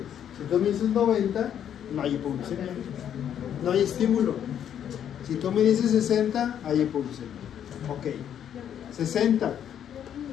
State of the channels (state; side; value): quieter; right; 9.5 dB